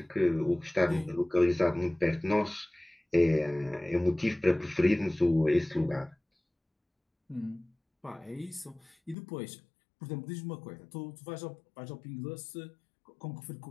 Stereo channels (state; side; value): drops out; right; at 9.2 s